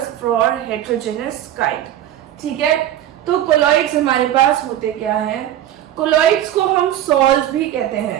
for heterogeneous kind. ठीक है, तो कोलॉइड्स हमारे पास होते क्या हैं? कोलॉइड्स को हम सॉल्व्स भी कहते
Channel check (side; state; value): left; quieter; 12.0 dB